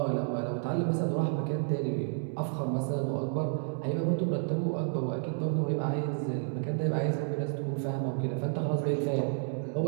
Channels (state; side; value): silent; left; digital silence